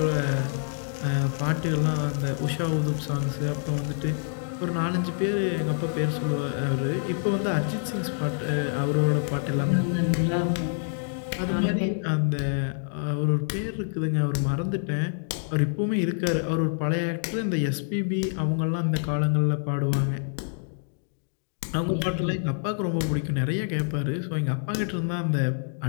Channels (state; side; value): silent; right; digital silence